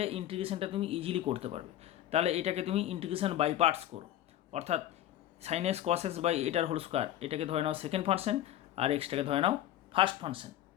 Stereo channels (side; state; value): right; quieter; 12.6 dB